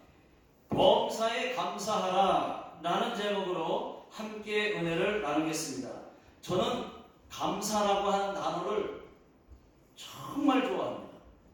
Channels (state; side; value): identical; both; correlation 1.00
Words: 범사에 감사하라 라는 제목으로 함께 은혜를 나누겠습니다. 저는 감사라고 하는 단어를 정말 좋아합니다.